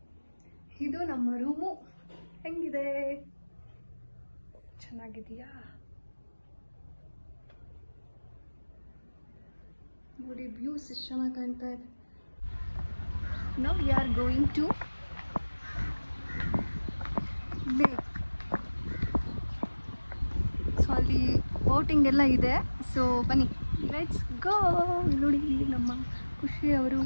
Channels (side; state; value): both; inverted; correlation -1.00